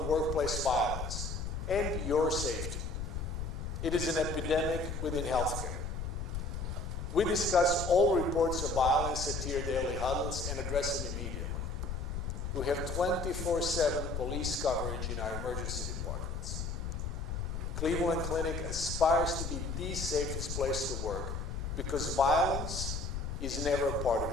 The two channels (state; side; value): noise; left; rumble, 4 dB below the sound